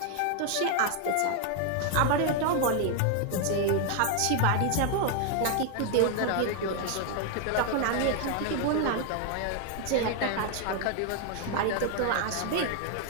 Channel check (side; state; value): both; different; correlation 0.01